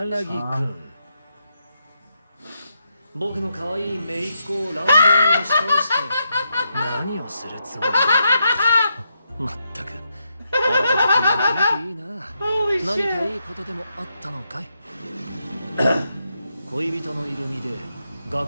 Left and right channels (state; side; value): inverted; both; correlation -0.82